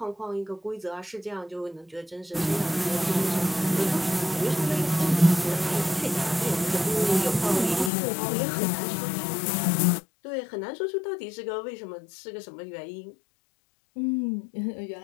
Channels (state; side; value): drops out; right; at 7.9 s